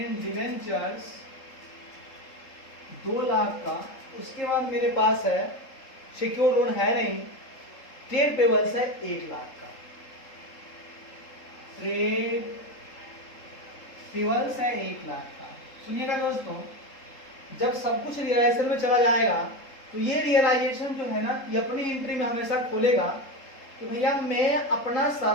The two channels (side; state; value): right; late; 3.7 ms